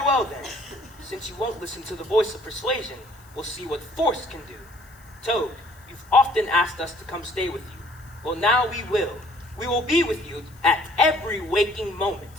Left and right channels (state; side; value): noise; left; hiss, 27 dB below the sound